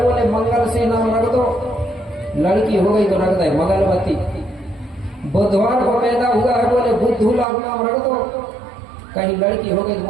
बोले मंगल से नाम रख दो, लड़की हो गई तो रख दे मंगलवती। बुधवार को पैदा हुआ है, बोले बुद्धू लाल नाम रख दो, कहीं लड़की हो गई तो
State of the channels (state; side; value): drops out; left; at 7.5 s